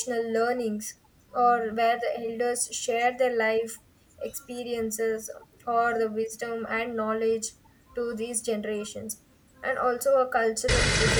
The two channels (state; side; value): identical; both; correlation 1.00